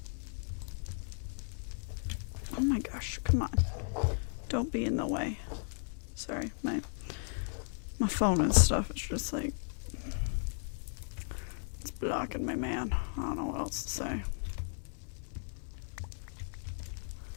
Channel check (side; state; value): right; silent; 54 dB below the other